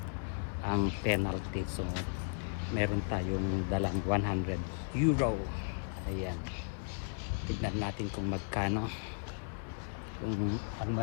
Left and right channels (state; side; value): silent; right; 54 dB below the other